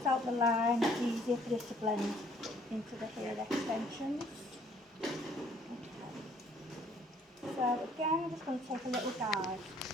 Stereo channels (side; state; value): both; normal; correlation 0.61